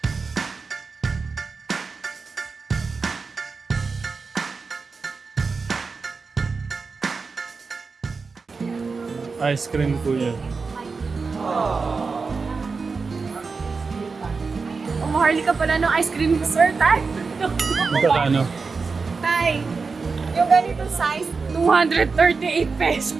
Ice cream po yan. Maharli ka pala ng ice cream, sir, tay. Magkakano? Tay, yung ganito size, 238 pesos.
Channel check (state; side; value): quieter; left; 4.6 dB